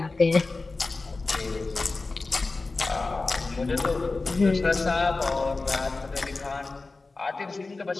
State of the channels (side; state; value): right; quieter; 3.6 dB